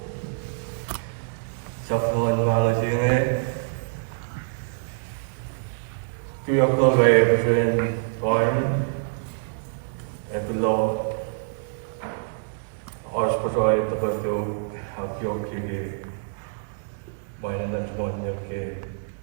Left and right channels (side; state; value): left; silent; digital silence